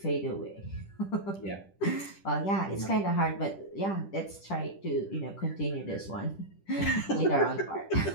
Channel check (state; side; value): late; right; 10 ms